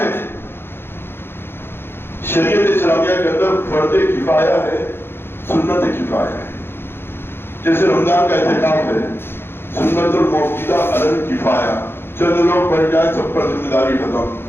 شریعت اسلامیہ کے اندر فرض کفایہ ہے، سنت کفایہ ہے۔ جیسے رمضان کا اعتکاف ہے، سنت الموقوتہ علی الکفایہ، چند لوگ پڑھ جائیں سب پر ذمہ داری ختم۔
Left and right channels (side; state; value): right; late; 0.11 ms